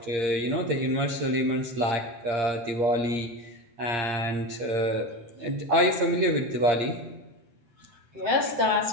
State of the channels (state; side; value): late; left; 8.6 ms